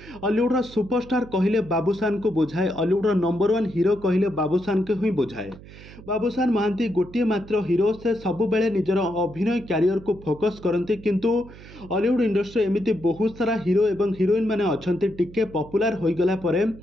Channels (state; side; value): noise; right; hum, 18 dB below the sound